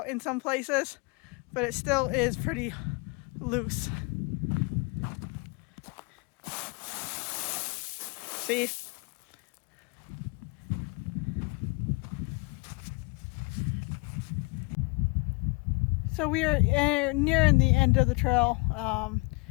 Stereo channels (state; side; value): quieter; right; 29.4 dB